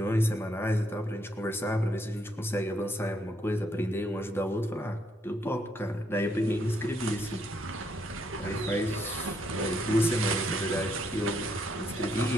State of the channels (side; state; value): both; normal; correlation 0.74